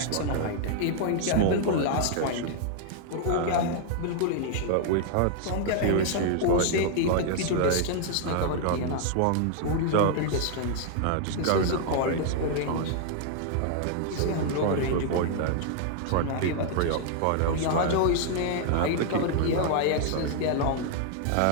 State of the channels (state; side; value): different; both; correlation 0.00